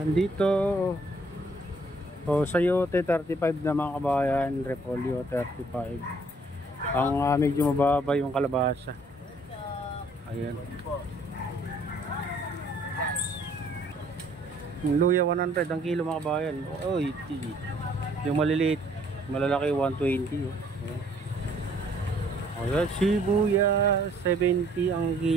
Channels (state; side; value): normal; both; correlation 0.62